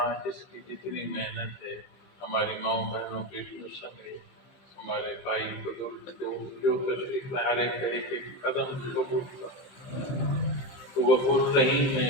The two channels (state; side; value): late; right; 15 ms